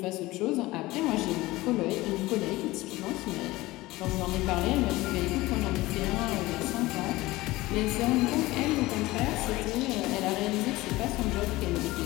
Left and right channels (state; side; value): quieter; right; 19.2 dB